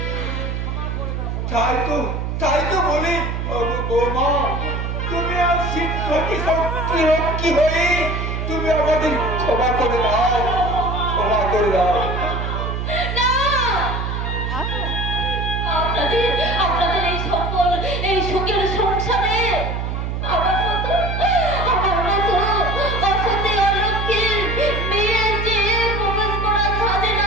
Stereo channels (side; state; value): right; noise; hum, 3 dB below the sound